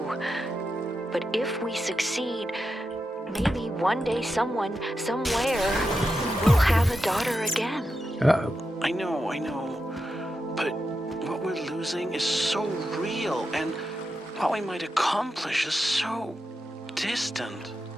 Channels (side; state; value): both; normal; correlation 0.88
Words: But if we succeed, maybe one day someone, somewhere, will have a daughter again. Uh-oh. I know. But what we're losing is so real, and what we might accomplish is so distant.